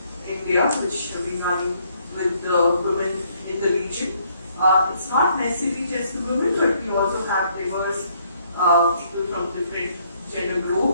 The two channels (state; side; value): inverted; both; correlation -0.68